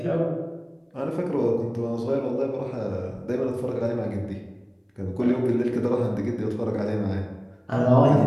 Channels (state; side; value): identical; both; correlation 1.00